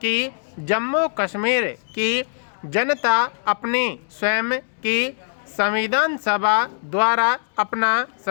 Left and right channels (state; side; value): silent; right; digital silence